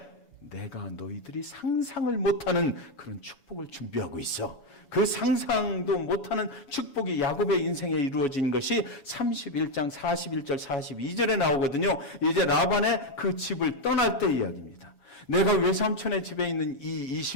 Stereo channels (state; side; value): late; right; 7.1 ms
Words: 내가 너희들이 상상을 못하는 그런 축복을 준비하고 있어. 그 상상도 못하는 축복이 야곱의 인생에 이루어진 것이 31장 41절 42절에 나오거든요. 이제 라반의 그 집을 떠날 때 이야기입니다. 내가 외삼촌의 집에 있는 이